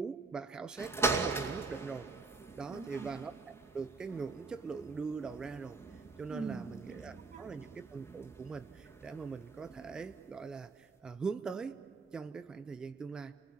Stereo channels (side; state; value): left; quieter; 3.8 dB